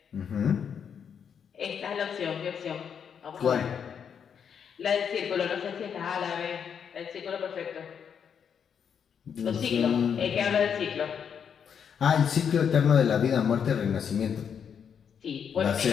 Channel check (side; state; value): right; quieter; 7.5 dB